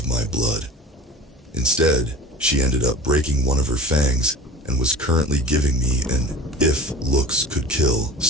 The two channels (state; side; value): normal; both; correlation 0.37